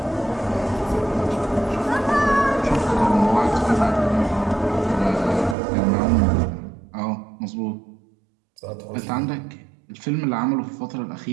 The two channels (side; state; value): left; drops out; at 5.6 s